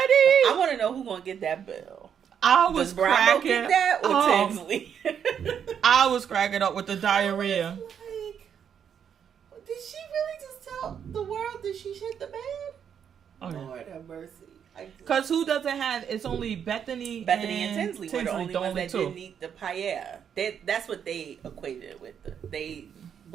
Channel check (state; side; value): quieter; left; 8.1 dB